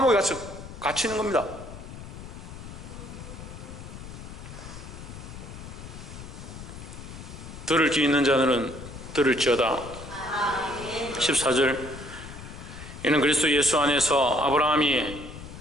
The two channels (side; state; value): left; noise; rumble, 12 dB below the sound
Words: 갇히는 겁니다. 들을 귀 있는 자들은 들을지어다. 14절, 이는 그리스도 예수 안에서